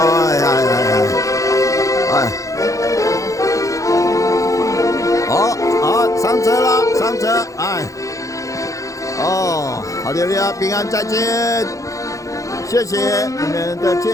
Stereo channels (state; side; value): late; right; 0.16 ms